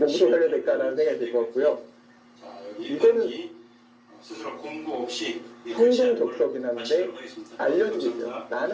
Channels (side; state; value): both; identical; correlation 1.00